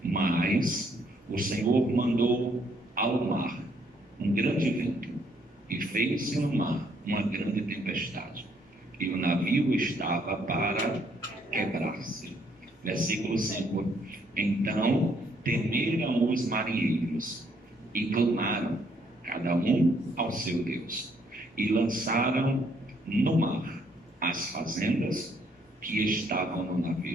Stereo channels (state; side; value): normal; both; correlation 0.68